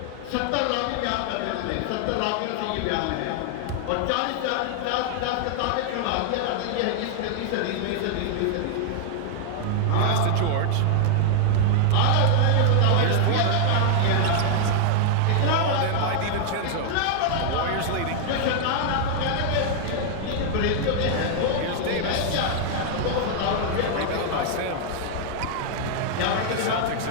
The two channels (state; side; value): different; both; correlation 0.00